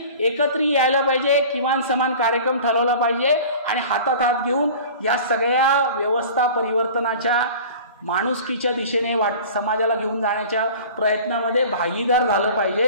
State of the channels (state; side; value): inverted; both; correlation -0.41